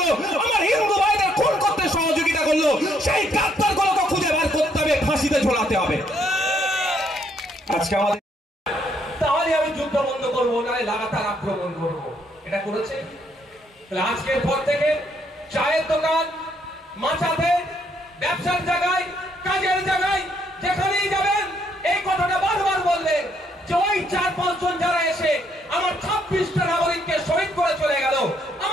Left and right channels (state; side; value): normal; both; correlation 0.71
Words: আমার হিন্দু ভাইদের খুন করতে সহযোগিতা করলো, সেই গাদ্দার গুলোকে খুঁজে বার করতে হবে, ফাঁসিতে ঝোলাতে হবে। আজকে আমাদের তাহলে আমি যুদ্ধ বন্ধ করবো, না লাগাতার আক্রমণ করবো। এটা করেছে। আজকের পর থেকে চায়ের দোকান, মাচাতে, ব্যবসার জায়গায়, কাজের জায়গায়, যেখানেই যাবেন এই কথাটা বারবার বললেন যে ওই 4-5 জন যারা এসে আমার 26টা নাগরিককে শহীদ করে চলে গেল,